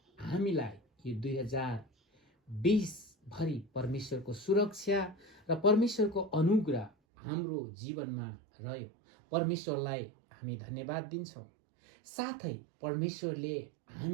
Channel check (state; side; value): drops out; left; at 6.9 s